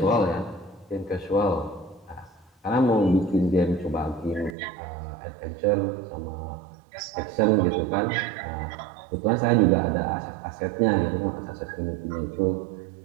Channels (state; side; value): drops out; left; at 4.5 s